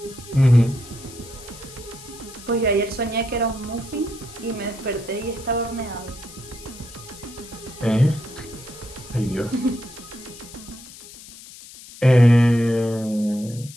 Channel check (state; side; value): noise; left; hiss, 17 dB below the sound